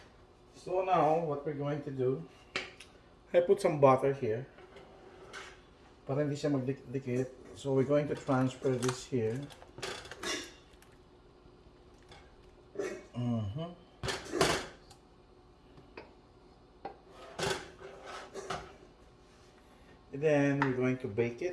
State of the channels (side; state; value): both; identical; correlation 1.00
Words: So now, what we're going to do, I put some butter here. Para hindi siya magdikit. So we're going to transfer this here. And then we're going to bake